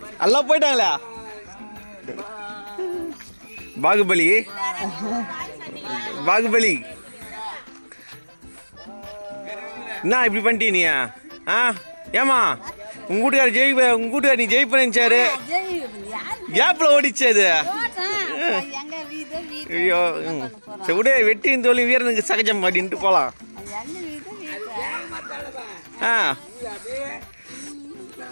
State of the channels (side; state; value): both; inverted; correlation -1.00